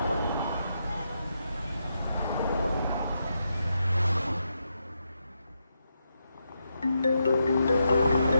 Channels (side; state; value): both; inverted; correlation -0.83